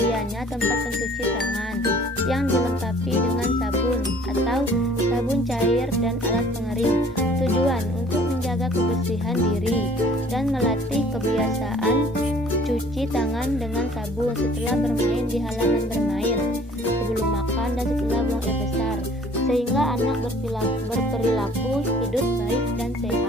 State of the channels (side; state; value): both; normal; correlation 0.53